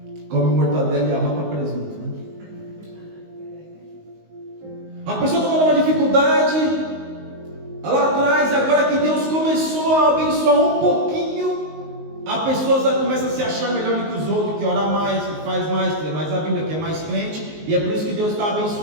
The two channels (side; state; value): left; late; 19 ms